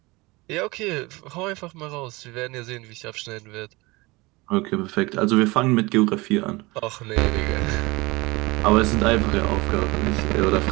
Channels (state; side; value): quieter; left; 23.1 dB